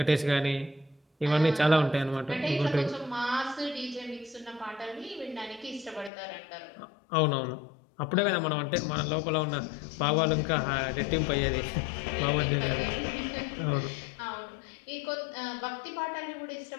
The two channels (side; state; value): right; drops out; at 6.1 s